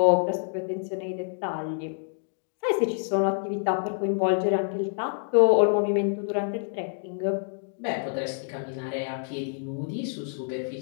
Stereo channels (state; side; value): silent; right; digital silence